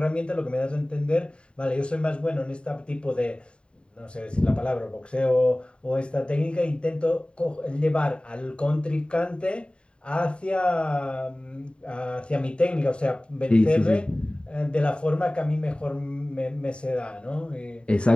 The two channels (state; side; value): late; right; 0.054 ms